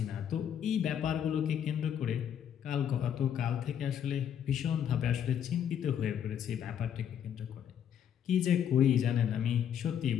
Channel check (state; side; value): quieter; right; 9.1 dB